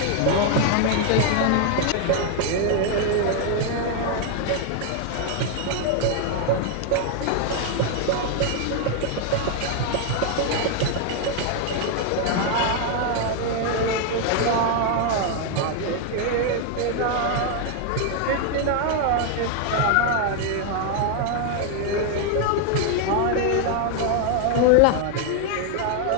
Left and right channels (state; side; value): different; both; correlation 0.00